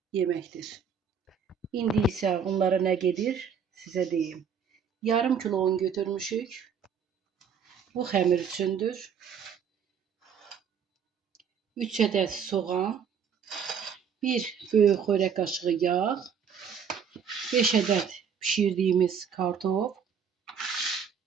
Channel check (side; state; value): left; quieter; 7.0 dB